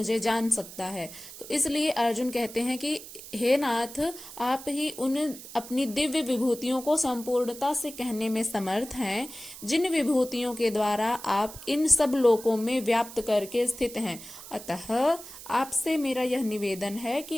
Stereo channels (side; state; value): right; noise; hiss, 14 dB below the sound